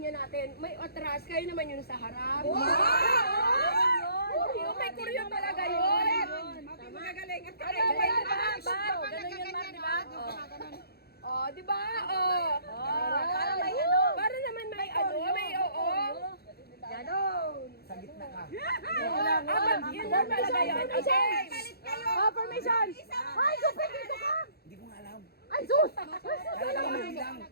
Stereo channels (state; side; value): late; right; 0.46 ms